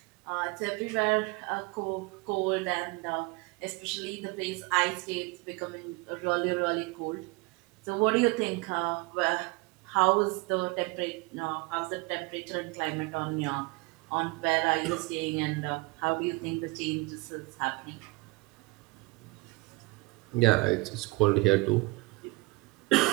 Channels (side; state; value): left; quieter; 25.3 dB